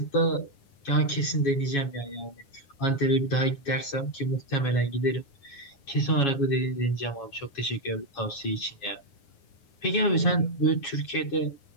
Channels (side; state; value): right; late; 9.8 ms